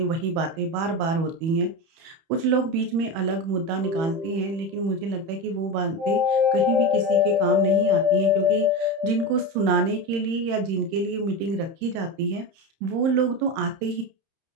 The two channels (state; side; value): late; left; 31 ms